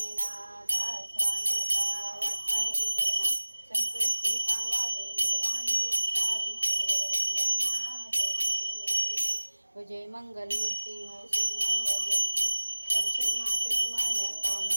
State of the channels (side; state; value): both; inverted; correlation -1.00